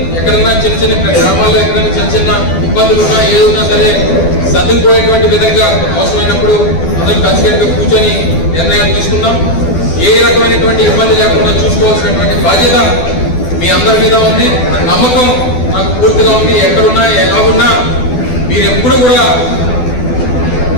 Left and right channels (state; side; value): late; right; 12 ms